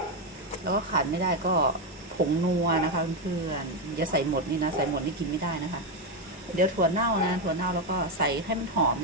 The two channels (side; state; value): both; normal; correlation 0.07